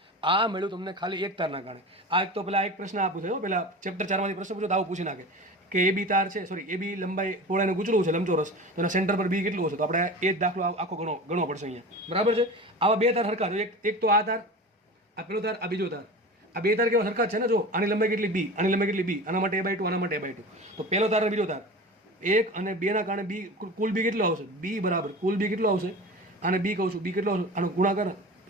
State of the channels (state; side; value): normal; both; correlation 0.33